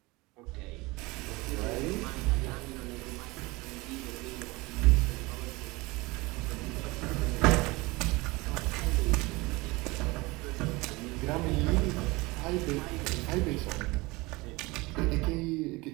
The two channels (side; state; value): left; quieter; 23.3 dB